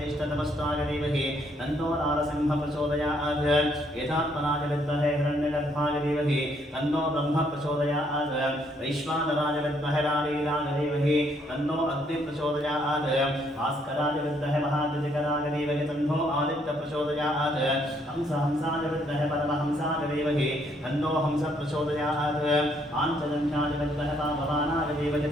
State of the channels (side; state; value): both; normal; correlation 0.69